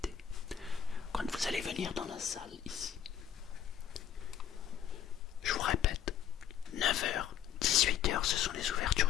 Quand vous allez venir dans la salle ici, je vous répète, 9h, 18h, ce sont les ouvertures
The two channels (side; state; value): right; quieter; 9.5 dB